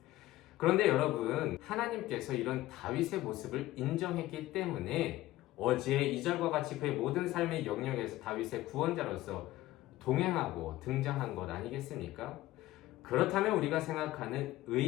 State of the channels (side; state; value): right; quieter; 16.4 dB